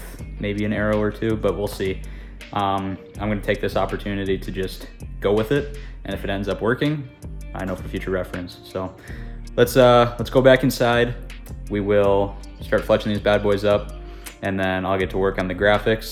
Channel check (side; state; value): both; identical; correlation 1.00